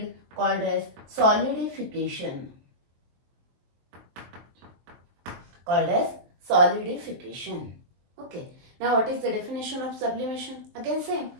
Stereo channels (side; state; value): left; late; 23 ms